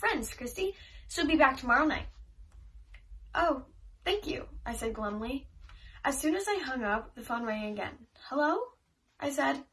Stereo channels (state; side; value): identical; both; correlation 1.00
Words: Kristy. She'll be back tomorrow night." "Oh, thank you," I said glumly. As soon as I hung up, the phone rang again. "Hello?" I said.